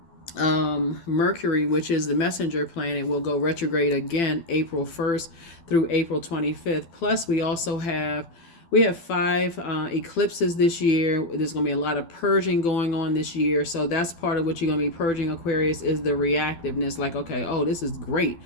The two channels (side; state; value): right; late; 12 ms